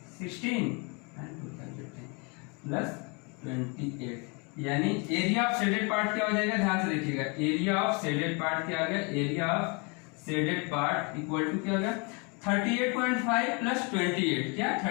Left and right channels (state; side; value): quieter; right; 32.0 dB